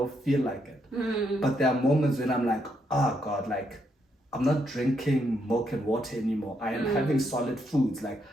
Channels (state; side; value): normal; both; correlation 0.77